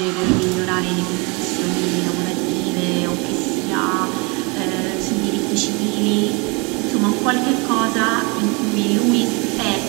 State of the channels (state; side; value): quieter; left; 29.5 dB